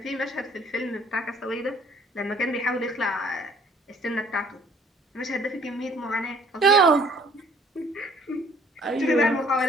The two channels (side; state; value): both; normal; correlation 0.58